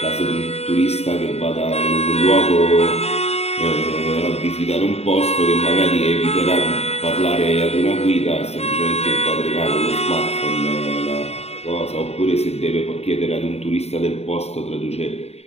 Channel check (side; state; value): right; late; 0.30 ms